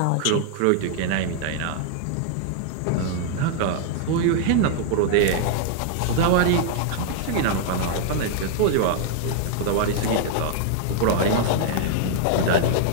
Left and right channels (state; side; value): different; both; correlation 0.00